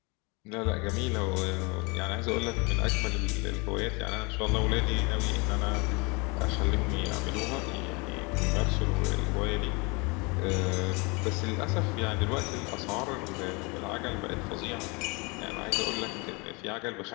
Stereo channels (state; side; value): quieter; right; 29.0 dB